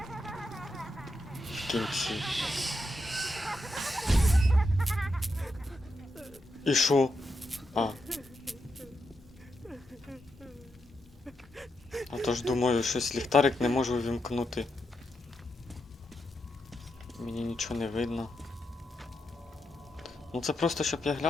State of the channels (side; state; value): both; normal; correlation 0.84